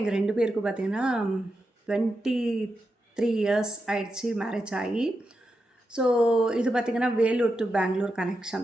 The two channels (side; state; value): both; normal; correlation 0.88